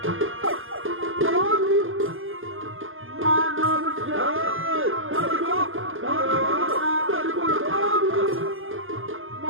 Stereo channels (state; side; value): late; left; 0.59 ms